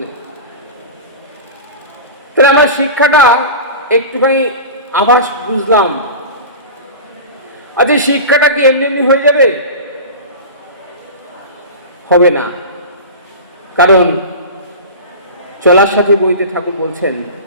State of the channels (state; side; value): inverted; both; correlation -0.31